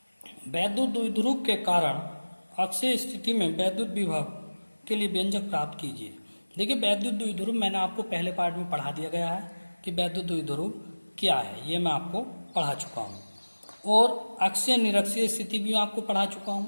वैद्युत द्विध्रुव के कारण अक्षीय स्थिति में वैद्युत विभव के लिए व्यंजक प्राप्त कीजिए। देखिए, वैद्युत द्विध्रुव मैंने आपको पहले पार्ट में पढ़ा दिया गया है कि वैद्युत द्विध्रुव क्या है, ये मैं आपको पढ़ा चुका हूँ, और अक्षीय निरक्षीय स्थिति भी आपको पढ़ा चुका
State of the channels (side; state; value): both; inverted; correlation -1.00